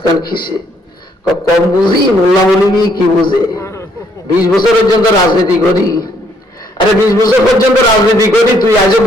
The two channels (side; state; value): both; normal; correlation 0.68